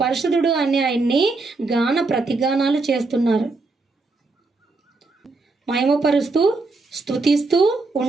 పరిశుద్ధుడు అని ఆయన్ని గాన ప్రతిగానాలు చేస్తున్నారు. మహిమపరుస్తూ స్తుతిస్తూ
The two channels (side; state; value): left; quieter; 3.6 dB